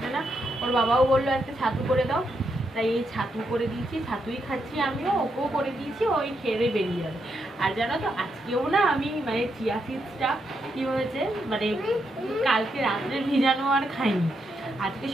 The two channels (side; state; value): both; normal; correlation 0.81